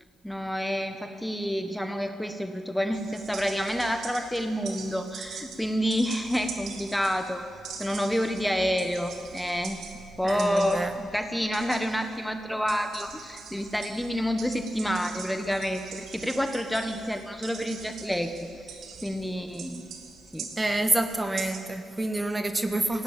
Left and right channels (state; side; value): normal; both; correlation 0.93